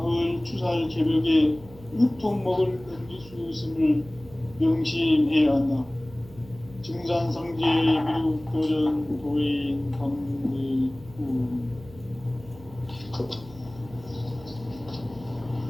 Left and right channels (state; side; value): noise; right; hum, 20 dB below the sound